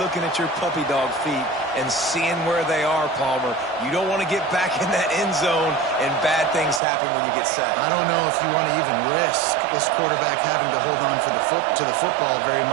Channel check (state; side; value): drops out; left; at 6.8 s